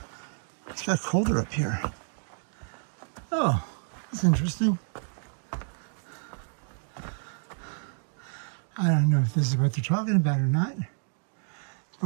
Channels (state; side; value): silent; left; 58 dB below the other